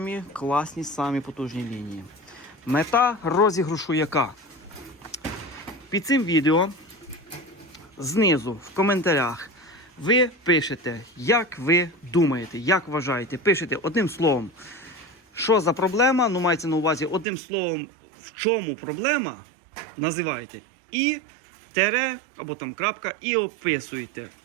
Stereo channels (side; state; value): left; drops out; at 17.2 s